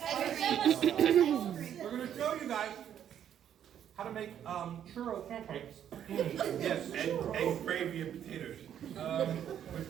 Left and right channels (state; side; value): quieter; left; 9.7 dB